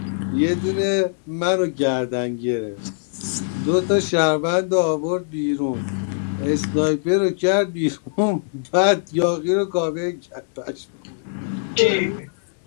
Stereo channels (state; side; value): silent; right; digital silence